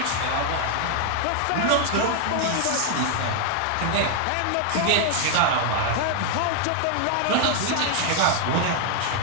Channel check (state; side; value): different; both; correlation 0.00